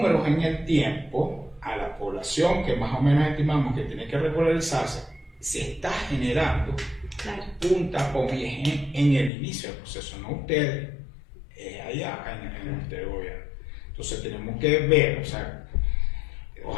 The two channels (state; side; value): drops out; right; at 9.3 s